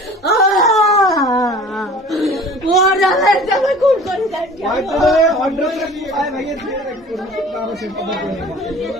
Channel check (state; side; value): normal; both; correlation 0.44